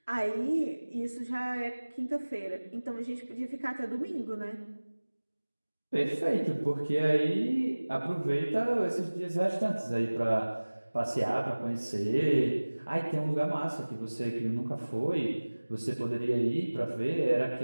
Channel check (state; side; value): inverted; both; correlation -1.00